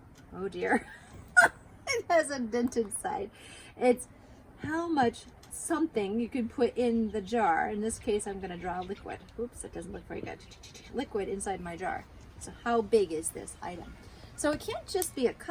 Oh dear. It has a dented side. It's how much something you can put in the jar. In this case, I'm going to draw liquid. Oops, it doesn't look very good. Liquid inside my jar. So how big is this item? So it can't just be a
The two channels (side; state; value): both; identical; correlation 1.00